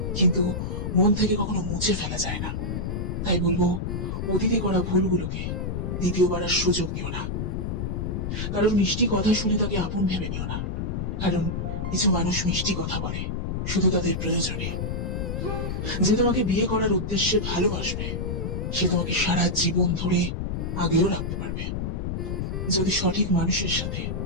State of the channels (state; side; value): noise; left; rumble, 2 dB below the sound